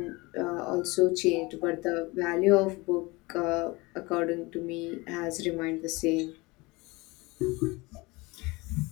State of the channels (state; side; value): quieter; right; 24.0 dB